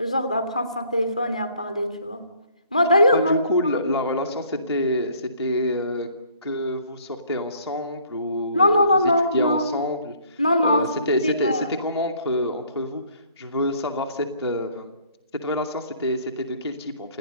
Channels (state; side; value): inverted; both; correlation -0.59